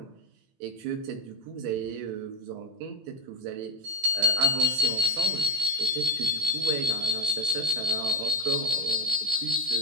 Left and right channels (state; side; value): late; left; 16 ms